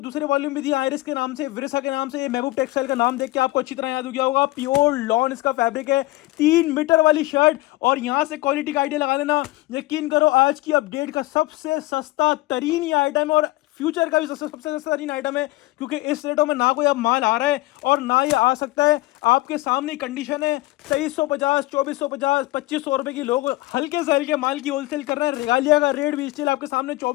वॉल्यूम भी दिया आयरिस के नाम से, विरसा के नाम से। ये महबूब टेक्सटाइल का नाम देख के आपको अच्छी तरह याद हो गया होगा। प्योर लॉन इसका फैब्रिक है, 3 मीटर वाली शर्ट। और यहां से क्वालिटी का आइडिया लगा लेना। यकीन करो आज की अपडेट का सबसे सस्ता तरीन ये आइटम है और फ्यूचर का भी सबसे सस्ता तरीन आइटम है, क्योंकि इस रेटों में ना कोई अब माल आ रहा है और ना ये आ सकता है। आपके सामने कंडीशन है 2350 2450 2500 रुपए की लोग हल्के से हल्के माल की होलसेल कर रहे हैं। रेगालिया का रेट भी स्टिल आपके सामने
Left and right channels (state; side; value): quieter; right; 19.5 dB